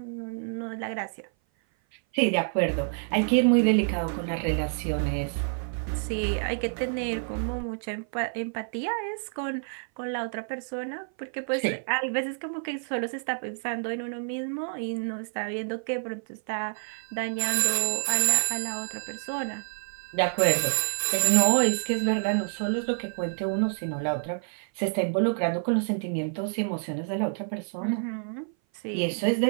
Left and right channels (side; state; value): left; silent; 57 dB below the other